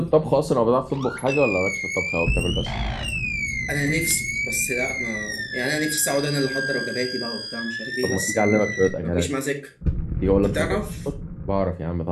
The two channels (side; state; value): both; identical; correlation 1.00